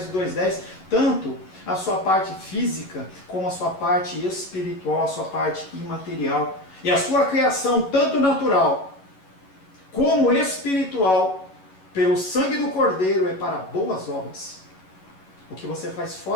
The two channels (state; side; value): late; right; 11 ms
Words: 2:10, tanto a sua parte física, como a sua parte espiritual, a sua parte imaterial. E a sua criação, tanto natural, como espiritual, pelo sangue do Cordeiro, é para boas obras. O que você faz